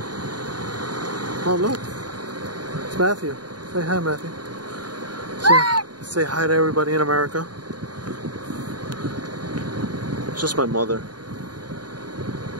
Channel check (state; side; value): late; left; 0.70 ms